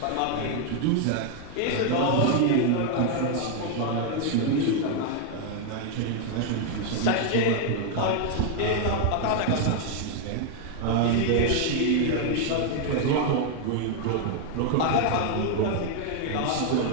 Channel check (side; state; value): both; different; correlation 0.00